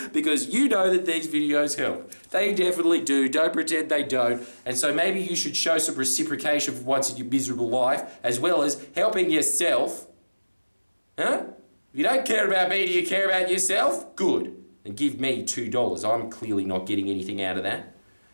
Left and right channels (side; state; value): both; inverted; correlation -1.00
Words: because you know that these videos help. They definitely do. Don't pretend they don't. And so maybe you should show some reciprocation for once in your miserable life, as well as helping yourself. Huh? If you don't care about me, do you care about yourself? Good. And give me $2. I'm clearly not getting anything out of that.